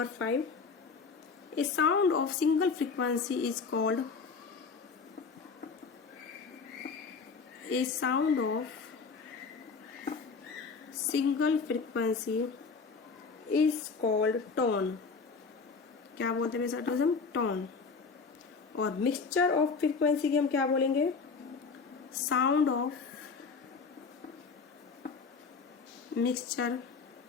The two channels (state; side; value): quieter; right; 4.9 dB